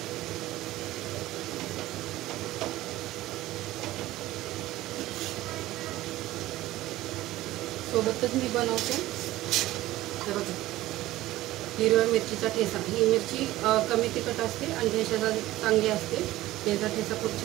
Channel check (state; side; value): quieter; left; 16.3 dB